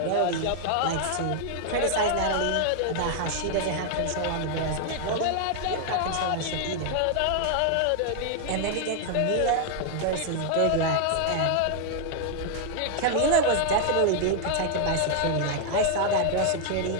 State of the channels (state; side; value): different; both; correlation 0.00